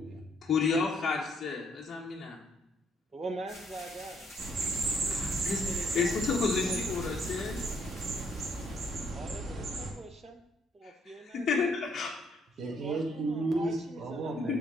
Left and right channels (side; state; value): both; normal; correlation 0.69